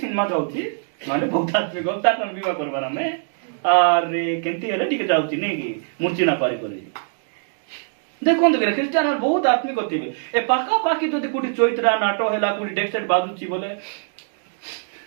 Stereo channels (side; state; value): left; silent; 64 dB below the other